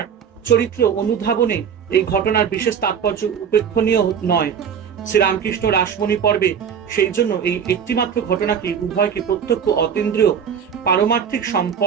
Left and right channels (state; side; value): quieter; left; 7.5 dB